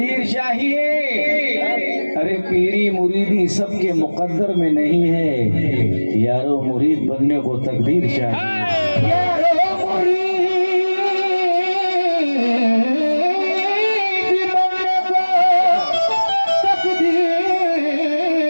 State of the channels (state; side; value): inverted; both; correlation -1.00